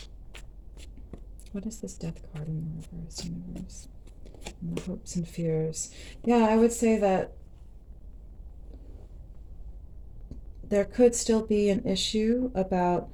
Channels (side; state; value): both; identical; correlation 1.00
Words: What is this Death card in the reverse, universe? And the hopes and fears. Yeah, I would say that there could still be an issue about